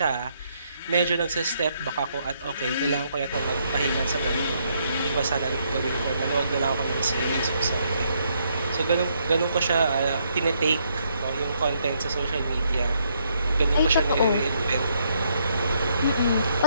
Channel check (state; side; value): inverted; both; correlation -0.74